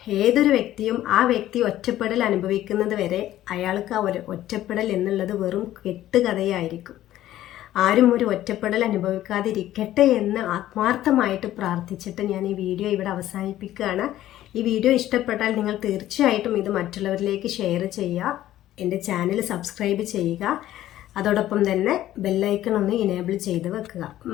ഏതൊരു വ്യക്തിയും ആ വ്യക്തി ഒറ്റപ്പെടൽ അനുഭവിക്കുന്നത് വരെ അയാൾക്ക് ആ ഒരു ഒറ്റപ്പെടൽ എന്നുള്ളത് വെറും കെട്ടുകഥയായിരിക്കും. ആരും ഒരു ഒറ്റപ്പെടൽ അനുഭവിക്കാതിരിക്കട്ടെ എന്ന് ആത്മാർത്ഥമായിട്ട് പ്രാർത്ഥിച്ചിട്ട് ഞാൻ ഈ വീഡിയോ ഇവിടെ അവസാനിപ്പിക്കുകയാണ്. ഈ വീഡിയോ ഇഷ്ടപ്പെട്ടാൽ നിങ്ങൾ തീർച്ചയായിട്ടും ഇത് മറ്റുള്ളവരിലേക്ക് ഷെയർ ചെയ്യുക. എൻ്റെ ചാനൽ സബ്സ്ക്രൈബ് ചെയ്യുക. അതോടൊപ്പം തന്നെ ബെല്ലൈക്കൺ ഒന്ന് ഇനേബിൾ ചെയ്ത് വെക്കുക.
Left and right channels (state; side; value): quieter; right; 13.6 dB